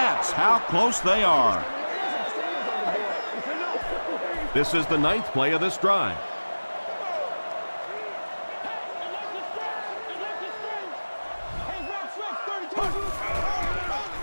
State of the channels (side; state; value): both; inverted; correlation -1.00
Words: how close they are. This is the 9th play of this drive.